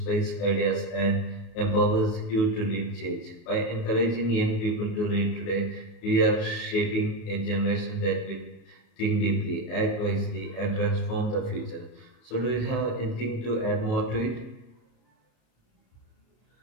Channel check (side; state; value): right; late; 33 ms